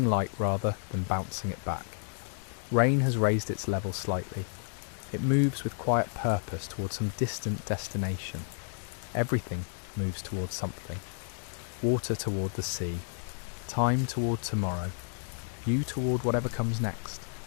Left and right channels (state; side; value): silent; right; 56 dB below the other